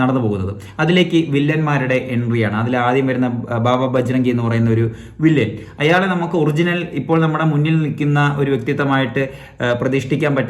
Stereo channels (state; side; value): identical; both; correlation 1.00